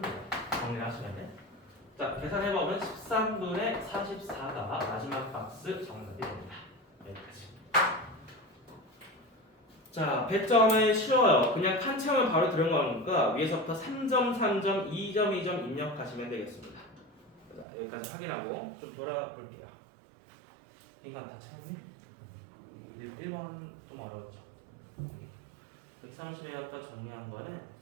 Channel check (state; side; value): drops out; left; at 17.7 s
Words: 돼요. 정리를 하시면 돼. 자, 계산해보면 13분의 44가 마지막 박스 정답이 됩니다. 여기까지. 자, 배점은 쉬워요. 그냥 칸 채우면 바로 들어가는 거니까 위에서부터 3점, 3점, 2점, 2점 입력하시면 되겠습니다. 자, 여기까지 확인하고 좀 돌아볼게요. 인간 다 채웠네? 1번 좀 어려웠죠. 130에 아까 정리한 거는